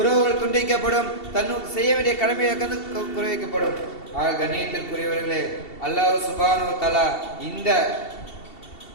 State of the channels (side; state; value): right; late; 2.7 ms